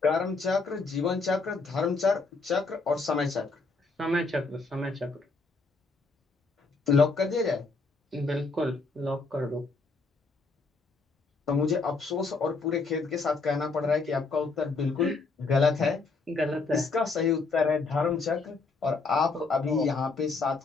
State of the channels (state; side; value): quieter; right; 3.9 dB